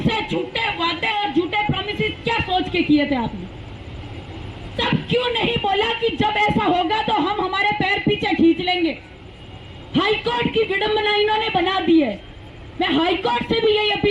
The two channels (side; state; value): both; identical; correlation 1.00